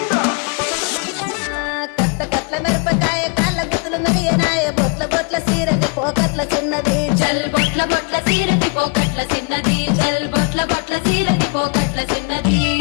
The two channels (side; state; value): right; quieter; 34.4 dB